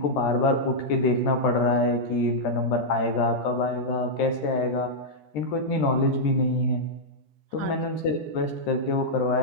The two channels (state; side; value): late; right; 13 ms